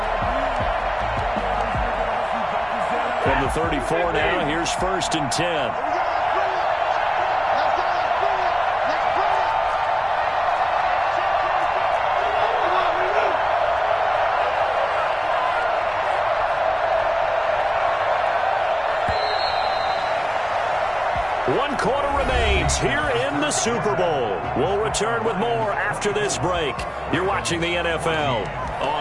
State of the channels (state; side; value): identical; both; correlation 1.00